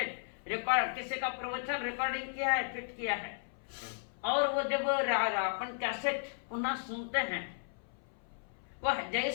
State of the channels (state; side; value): silent; right; 54 dB below the other